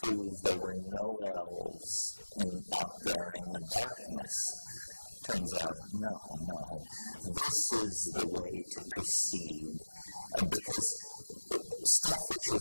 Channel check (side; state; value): both; inverted; correlation -1.00